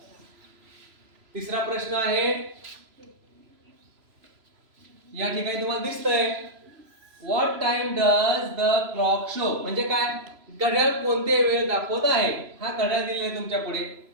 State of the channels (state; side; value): late; left; 3.0 ms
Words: तिसरा प्रश्न आहे, या ठिकाणी तुम्हाला दिसतंय, what time does the clock show. म्हणजे काय? घड्याळ कोणते वेळ दाखवत आहे. हा घड्याळ दिलेला तुमच्या पुढे